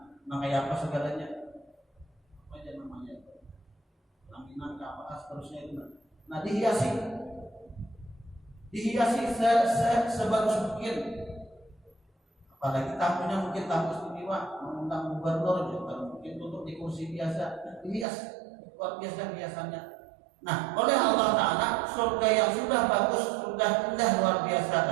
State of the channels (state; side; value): drops out; left; at 18.1 s